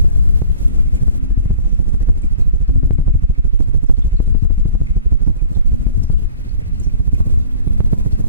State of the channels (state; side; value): inverted; both; correlation -0.49